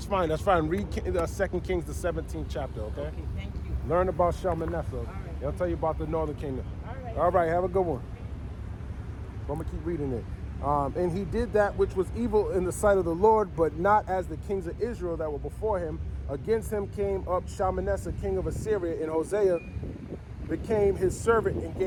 fine, that's fine. Read 2 Kings, the 17th chapter, okay? Okay, thank you. Learn about Shalmaneser. All right. They'll tell you about the northern kingdom. All right. Have a good one. I'm gonna keep reading it. And he did that which was evil in the sight of the Lord, but not as the kings of Israel that were before him. Against him came up Shalmaneser, king of Assyria, and Hosea became his servant and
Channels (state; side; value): identical; both; correlation 1.00